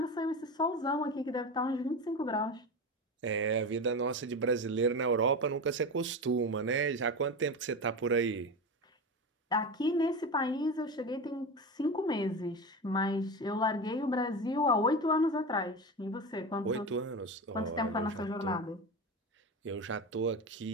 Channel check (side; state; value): both; normal; correlation 0.23